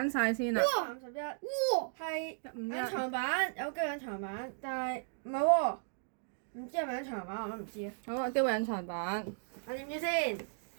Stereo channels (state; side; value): silent; left; digital silence